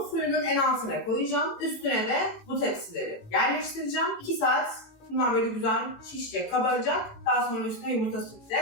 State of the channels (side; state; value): right; late; 18 ms